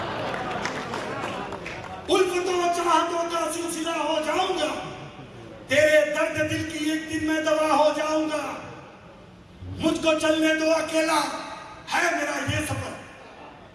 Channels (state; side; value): identical; both; correlation 1.00